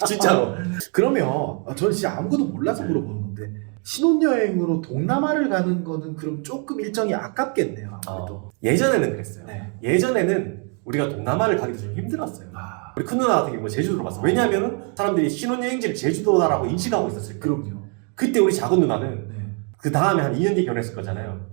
진짜로. 그러면 저는 진짜 아무것도 몰라서 물어보는 건데 신혼여행으로 동남아를 가는 거는 그럼 조금 일정이 아깝겠네요. 아무래도. 예전에는 그랬어요. 네. 예전에는 우리가 동남아를 가기도 좀 힘들었어요. 우리 큰 누나 같은 경우 제주도로 갔어. 왜냐하면 사람들이 신혼여행지를 제주도다라고 인식하고 있었을 거예요. 그럼요. 그때 우리 작은 누나는 네. 그 다음에 한 2년 뒤에 결혼했을 거잖아요.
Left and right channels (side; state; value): left; quieter; 38.7 dB